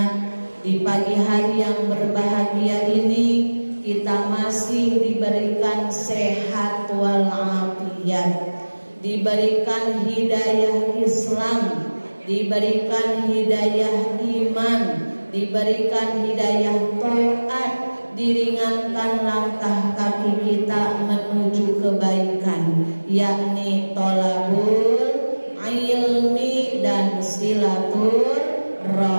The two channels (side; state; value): both; inverted; correlation -1.00